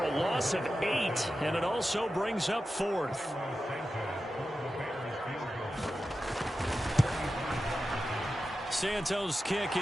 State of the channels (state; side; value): normal; both; correlation 0.92